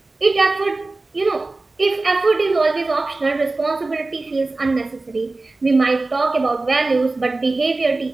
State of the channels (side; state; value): left; quieter; 3.3 dB